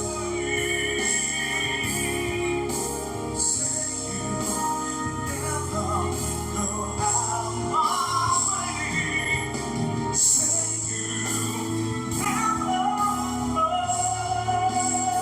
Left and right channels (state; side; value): identical; both; correlation 1.00